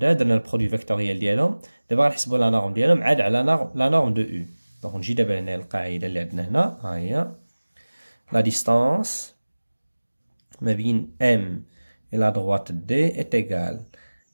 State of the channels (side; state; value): both; inverted; correlation -1.00